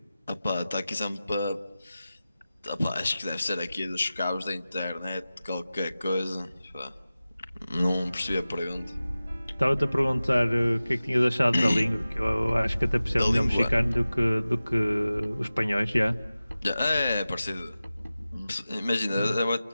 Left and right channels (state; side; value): inverted; both; correlation -0.96